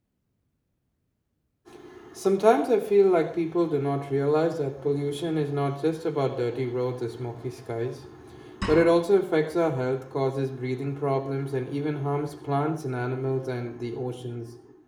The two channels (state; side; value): identical; both; correlation 1.00